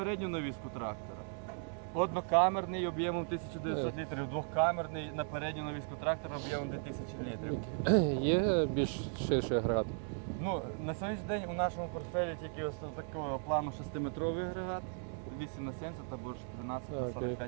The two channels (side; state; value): left; silent; 53 dB below the other